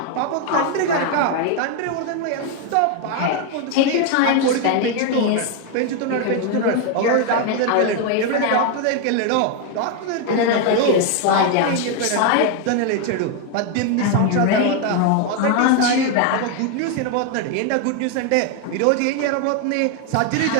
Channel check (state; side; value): different; both; correlation 0.01